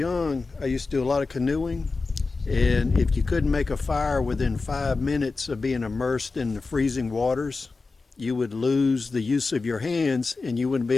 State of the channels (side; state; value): right; quieter; 4.0 dB